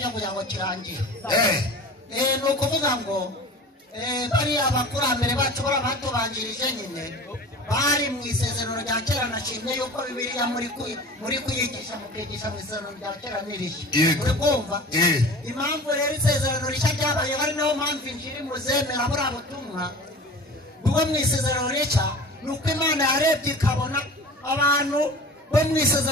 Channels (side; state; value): both; normal; correlation 0.38